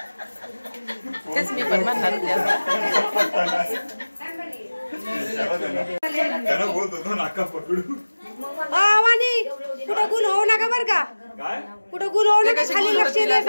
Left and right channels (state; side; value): inverted; both; correlation -1.00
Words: तेच मी पण म्हणणार होते त्याला बोलतो नाका पकडू। वाणी कुठं गुल होऊ नका बर का, कुठं गुल होऊ नका, खाली लक्ष